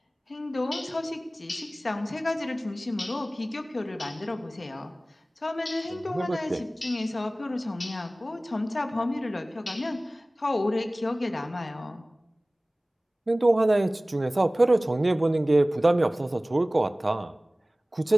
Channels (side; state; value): both; normal; correlation 0.98